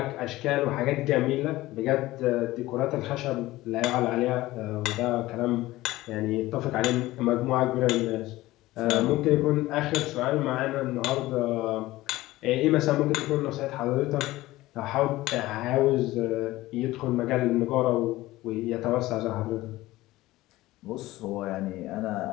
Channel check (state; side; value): quieter; right; 17.6 dB